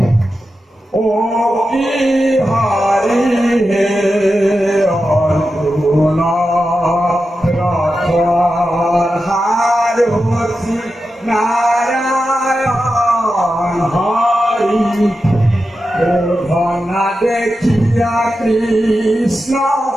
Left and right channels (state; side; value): normal; both; correlation 0.91